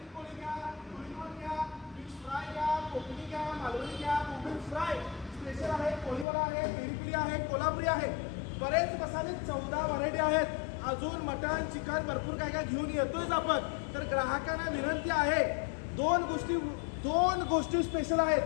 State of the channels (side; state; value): right; drops out; at 6.2 s